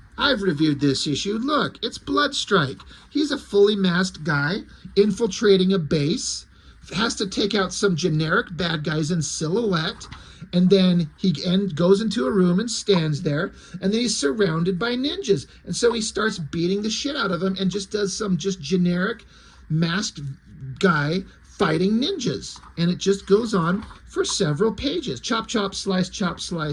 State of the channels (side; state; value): both; identical; correlation 1.00